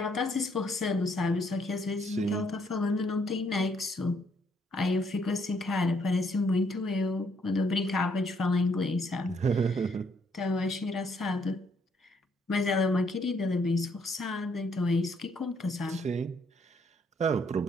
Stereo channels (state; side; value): normal; both; correlation 0.70